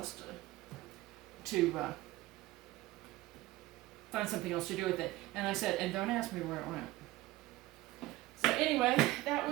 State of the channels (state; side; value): quieter; left; 18.1 dB